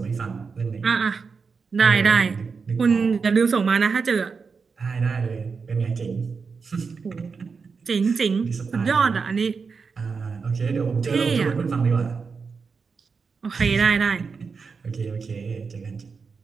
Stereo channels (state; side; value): quieter; left; 5.2 dB